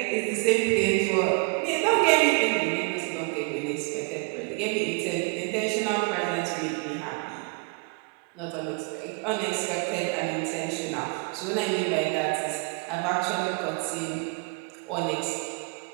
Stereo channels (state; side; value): quieter; left; 33.8 dB